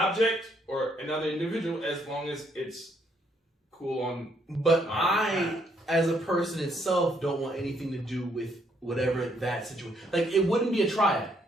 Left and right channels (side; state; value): both; normal; correlation 0.71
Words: or another individual, as long as it's cool on. But I, as a person itself, don't want anything to do with whatever that situation. Like, it wouldn't be a triad.